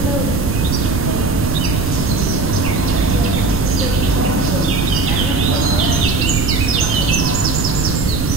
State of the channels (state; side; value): noise; right; rumble, 2 dB below the sound